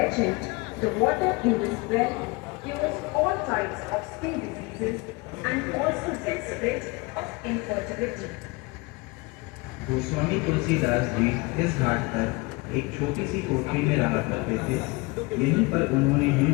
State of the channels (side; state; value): right; quieter; 25.6 dB